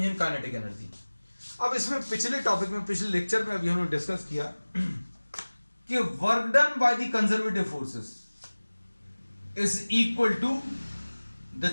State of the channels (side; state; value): both; inverted; correlation -1.00